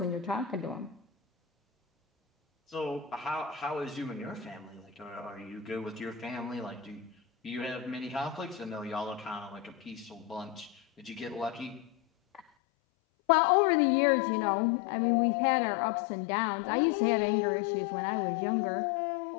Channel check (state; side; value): drops out; right; at 12.4 s